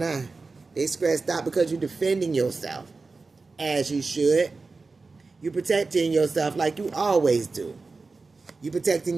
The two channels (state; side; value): quieter; left; 4.0 dB